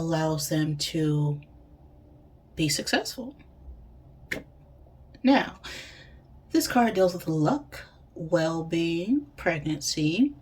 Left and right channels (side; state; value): both; identical; correlation 1.00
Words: them to be successful. Now, this card deals with luck, well being, pregnancy,